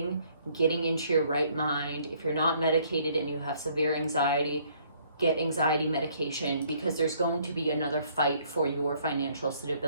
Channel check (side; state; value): both; inverted; correlation -0.63